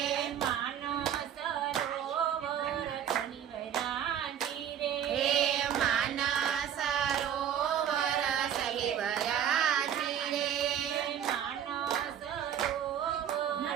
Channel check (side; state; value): left; quieter; 9.5 dB